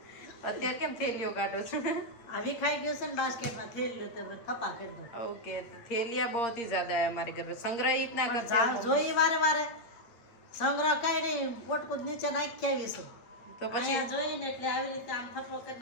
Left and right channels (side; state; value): right; late; 8.5 ms